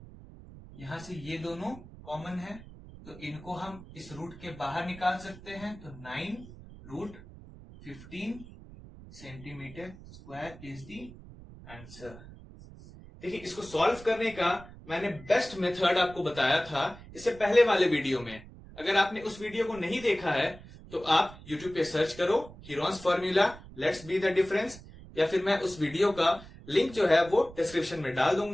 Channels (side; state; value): right; noise; rumble, 18 dB below the sound